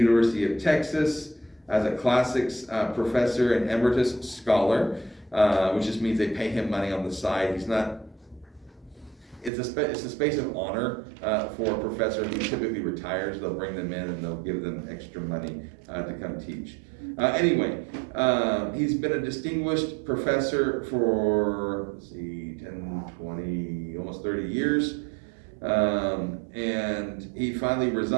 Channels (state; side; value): drops out; left; at 9.5 s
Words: of Texas as a classics professor and emeritus scholar, which just means they pay him money on the side. He's not. It's a space of honor for a professor who typically retires. They'll bring them in and they'll give them extra money to come teach. Anyway, he's been a distinguished professor for, let's see, 10, 20, almost 30 years. And he finally